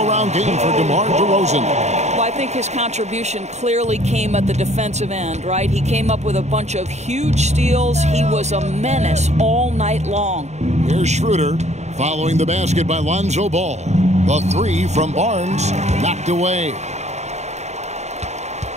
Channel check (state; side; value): late; left; 0.33 ms